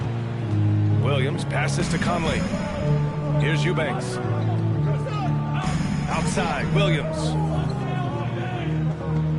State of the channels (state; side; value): identical; both; correlation 1.00